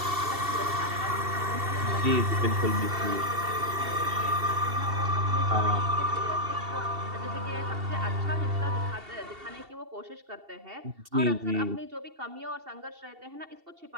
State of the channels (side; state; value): left; late; 2.7 ms